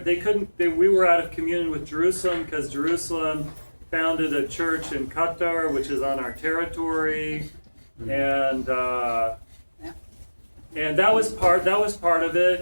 we were out of communion with Jerusalem because Jerusalem founded a church in Qatar, which is on our territory, and that was part of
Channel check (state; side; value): inverted; both; correlation -1.00